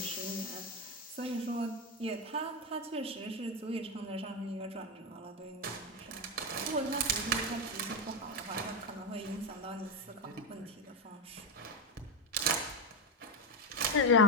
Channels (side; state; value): both; normal; correlation 0.10